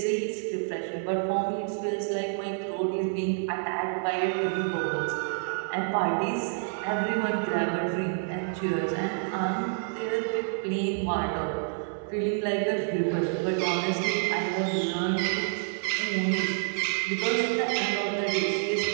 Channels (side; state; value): left; silent; digital silence